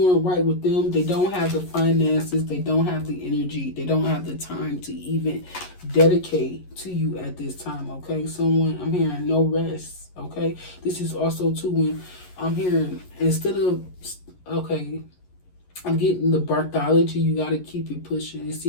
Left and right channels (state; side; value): late; right; 11 ms